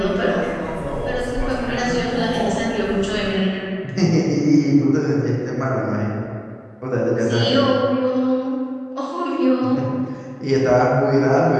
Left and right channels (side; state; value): both; identical; correlation 1.00